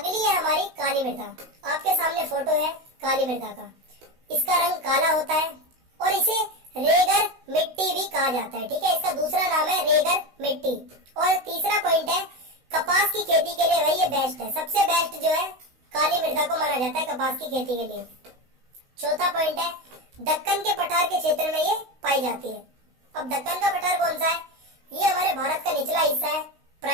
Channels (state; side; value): late; left; 16 ms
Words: है हमारी काली मृदा। आपके सामने फोटो है काली मृदा का। इसका रंग काला होता है और इसे रेगर मिट्टी भी कहा जाता है। ठीक है, इसका दूसरा नाम है रेगर मिट्टी। और तीसरा पॉइंट है कपास की खेती के लिए भाई ये बेस्ट है, सबसे बेस्ट जो है काली मृदा को माना जाता है कपास की खेती के लिए। चौथा पॉइंट है दक्कन के पठार के क्षेत्र में ये पाई जाती है। अब दक्कन का पठार कौन सा है? ये हमारे भारत का निचला हिस्सा है,